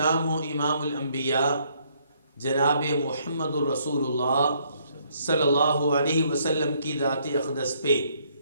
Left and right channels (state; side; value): inverted; both; correlation -0.69